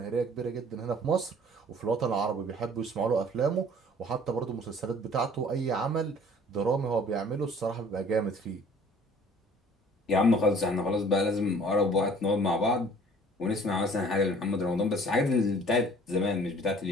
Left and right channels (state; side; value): normal; both; correlation 0.52